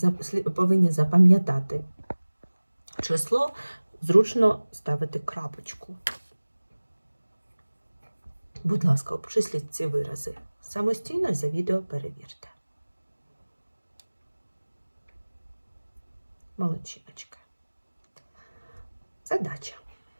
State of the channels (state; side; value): inverted; both; correlation -1.00